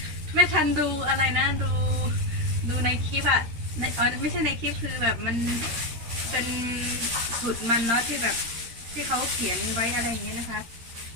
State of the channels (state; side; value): late; left; 13 ms